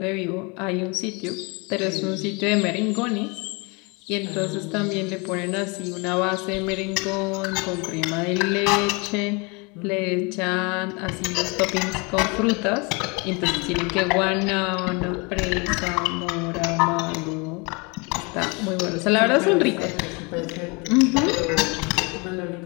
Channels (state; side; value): quieter; right; 29.9 dB